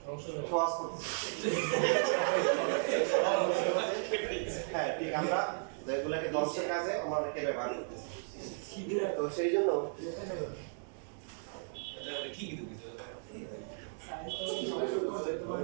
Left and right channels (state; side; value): silent; left; digital silence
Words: সহজ করতেছে হ্যাঁ ঠিক আমরা যেগুলোকে ধ্বংসের কাজে আমরা অনেকে ব্যবহার করতেছি তো সেই জন্য